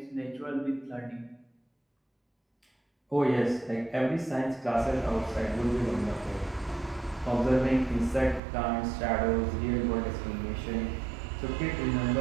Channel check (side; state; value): left; drops out; at 8.4 s